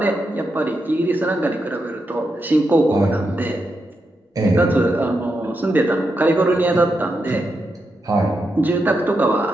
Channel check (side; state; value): both; normal; correlation 0.85